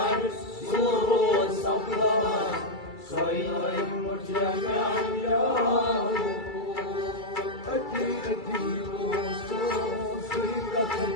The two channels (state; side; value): late; right; 2.3 ms